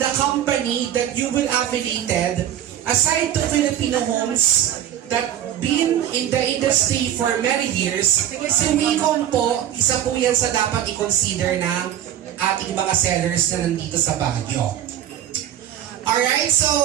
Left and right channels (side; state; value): left; quieter; 11.0 dB